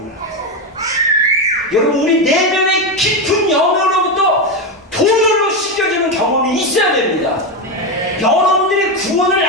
걸 알아요. 여러분, 우리 내면의 깊은 영역으로부터 보혈로 씻겨지는 경험이 있어야 됩니다. 여러분들이 구원을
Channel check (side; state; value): both; normal; correlation 0.11